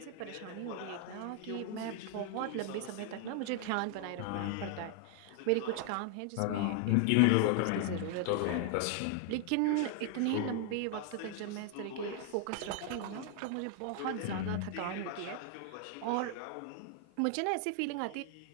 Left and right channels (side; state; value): both; different; correlation 0.00